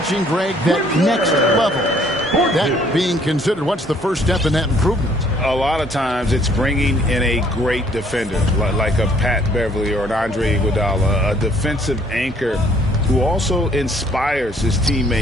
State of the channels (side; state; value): both; normal; correlation 0.62